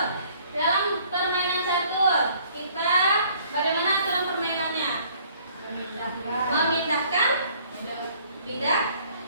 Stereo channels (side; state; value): both; inverted; correlation -0.59